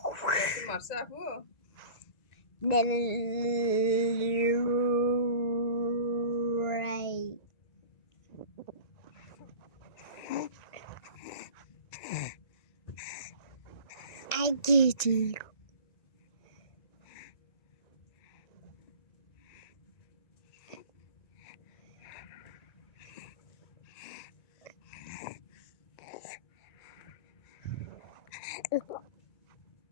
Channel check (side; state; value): right; late; 1.9 ms